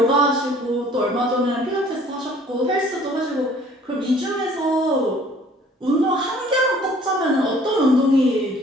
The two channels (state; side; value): normal; both; correlation 0.54